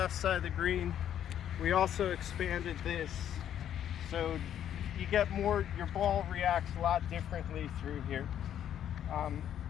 side of the green, we also expanded this, so you get more, your ball reacts a lot differently through here.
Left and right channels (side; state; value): right; quieter; 10.2 dB